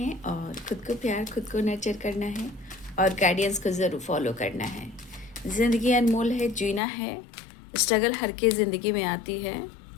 और खुद को प्यार, खुद को नर्चर करना है और गाइडेंस को ज़रूर फॉलो करना है। ज़िंदगी अनमोल है, जीना है। स्ट्रगल हर की ज़िंदगी में आती है।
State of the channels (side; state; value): right; drops out; at 6.8 s